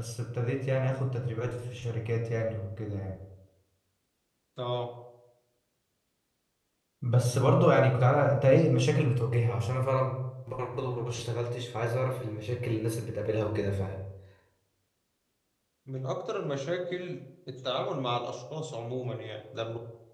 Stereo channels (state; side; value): identical; both; correlation 1.00